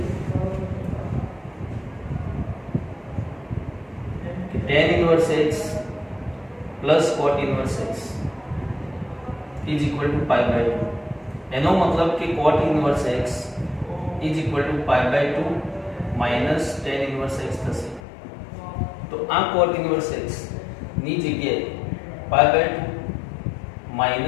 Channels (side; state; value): right; drops out; at 18.0 s